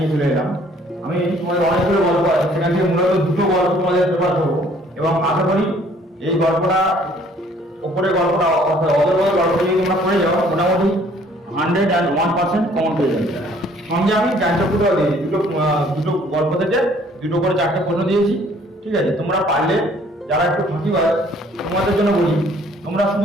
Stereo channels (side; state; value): both; normal; correlation 0.59